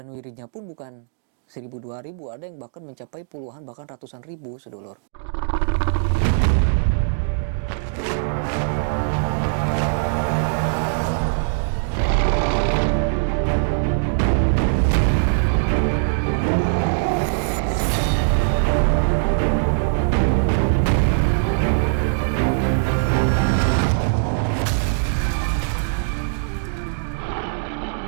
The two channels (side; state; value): left; silent; digital silence